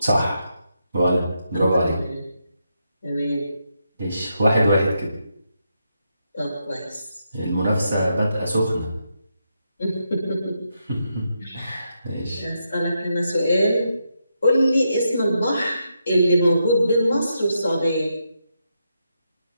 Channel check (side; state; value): both; inverted; correlation -0.82